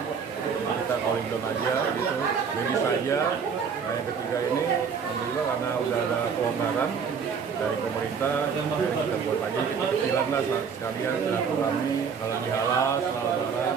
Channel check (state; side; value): quieter; left; 6.3 dB